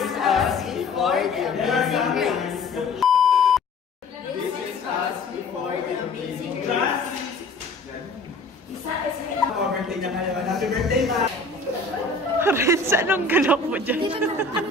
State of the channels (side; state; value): right; quieter; 3.5 dB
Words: us before the amazing race. This is us before the amazing race. Birthday na kayo. Happy birthday, ma! Renz, anong galaw mo dyan?